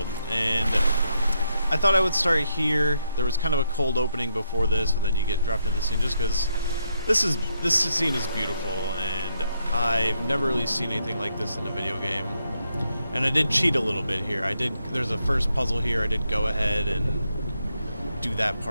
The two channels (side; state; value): both; inverted; correlation -0.78